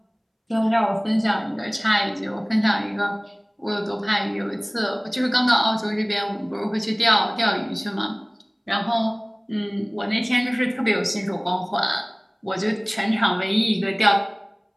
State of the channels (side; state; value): both; identical; correlation 1.00